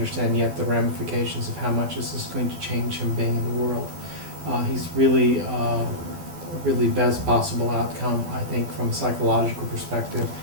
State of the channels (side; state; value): left; late; 12 ms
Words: yet the ramifications of how much this is going to change him being in the world. He's really really best possible outcome, I think, from a psychological perspective,